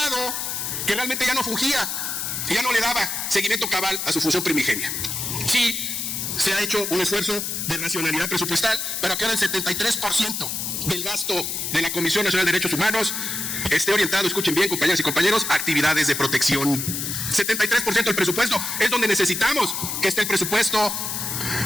que realmente ya no fungía, que ya no le daba seguimiento cabal a su función primigenia. Sí, se ha hecho un esfuerzo de racionalidad presupuestal, pero que ahora el 73% del gasto de la Comisión Nacional de Derechos Humanos esté orientado, escuchen bien, compañeras y compañeros, a actividades de protección. 73% del presupuesto es donde necesitamos que esté el presupuesto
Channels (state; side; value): noise; left; hiss, 3 dB below the sound